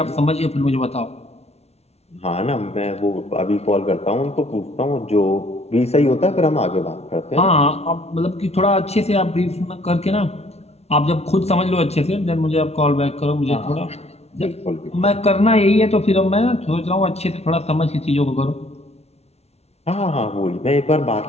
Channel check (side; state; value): right; late; 0.31 ms